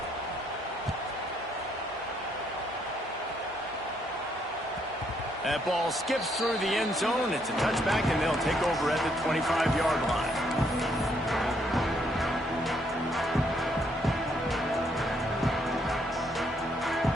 That ball skips through the end zone. It's a touchback, and they'll take over at the 25-yard line.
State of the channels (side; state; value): both; normal; correlation 0.72